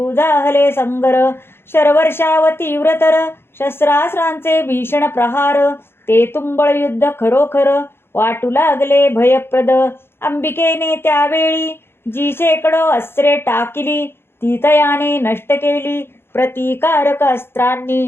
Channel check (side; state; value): right; late; 0.11 ms